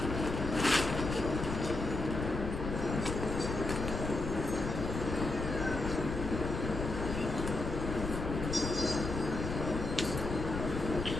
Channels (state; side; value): noise; left; rumble, 4 dB below the sound